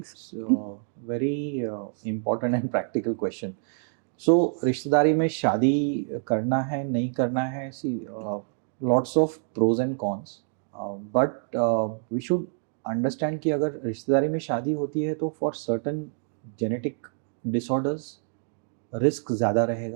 Very important and practical question. So रिश्तेदारी में शादी करना है नहीं करना है, see lots of pros and cons, but we should understand कि अगर रिश्तेदारी में शादी होती है तो for certain genetic disorders risk ज़्यादा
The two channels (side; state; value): left; silent; 58 dB below the other